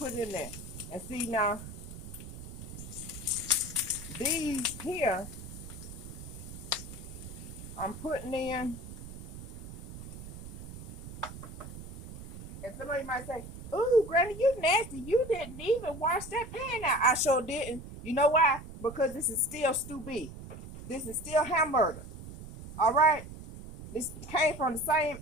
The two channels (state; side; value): noise; right; rumble, 12 dB below the sound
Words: it in there. And see now, these here, I'm putting in. And somebody might say, ooh, Granny, you nasty. You didn't even wash that pan out. I sure didn't. You know why? Because this is still stew beef. This is still hamburger. All right? This came from the same